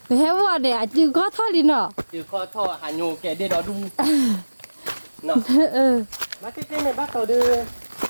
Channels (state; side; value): inverted; both; correlation -1.00